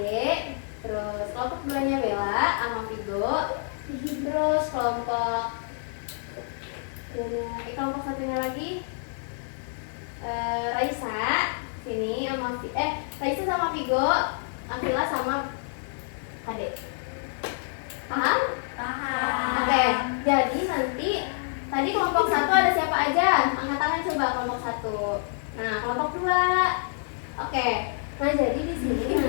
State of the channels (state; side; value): silent; right; digital silence